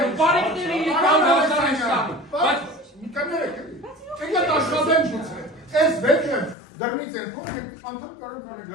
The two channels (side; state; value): right; drops out; at 6.6 s